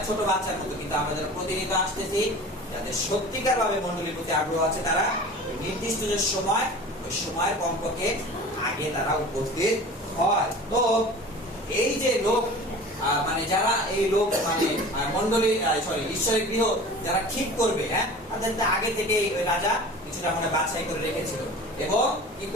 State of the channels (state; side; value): normal; both; correlation 0.39